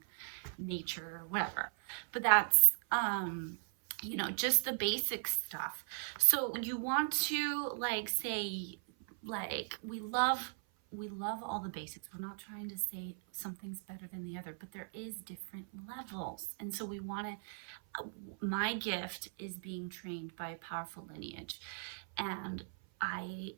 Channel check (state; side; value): silent; left; 52 dB below the other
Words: nature or whatever. But that's just the basic stuff. So you want to say, we love all the basics. We're not trying to say something's better than the other, but there is different levels. And so we want to, my gift is being trained by a powerful lineage. And I